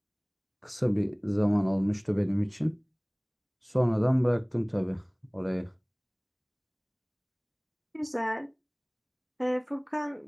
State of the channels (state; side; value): identical; both; correlation 1.00